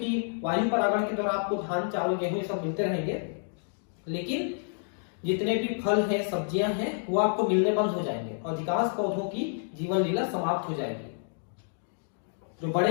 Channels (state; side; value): silent; right; digital silence